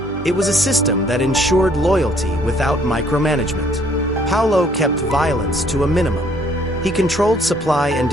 It was a system that ensured loyalty without micromanagement. Paolo kept violence to a minimum. He controlled supply and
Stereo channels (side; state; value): both; normal; correlation 0.62